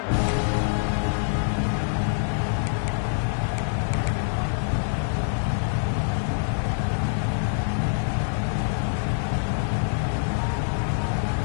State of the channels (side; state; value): right; silent; digital silence